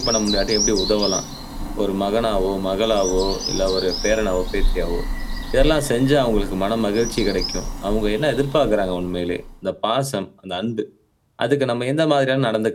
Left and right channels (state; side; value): identical; both; correlation 1.00